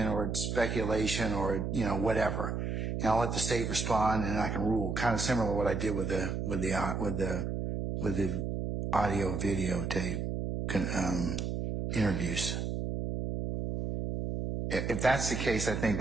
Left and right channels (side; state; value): right; noise; hum, 2 dB below the sound